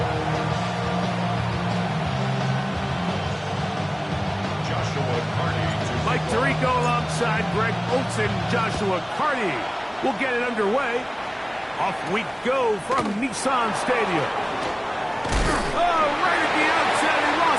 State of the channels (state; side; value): identical; both; correlation 1.00